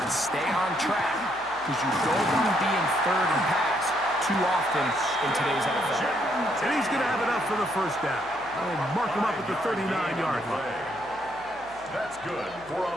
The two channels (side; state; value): right; noise; hum, 24 dB below the sound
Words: Stay on track because you don't want to be in third and pass too often in today's NFL. And he's going to have it up for the first down. I'll mark him up at the 39-yard line. That's good for a